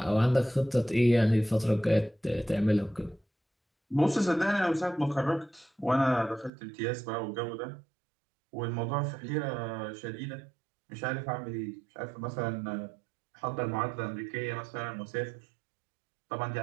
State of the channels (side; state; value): left; drops out; at 6.5 s